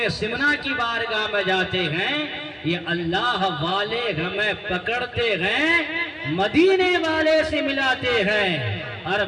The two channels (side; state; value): both; identical; correlation 1.00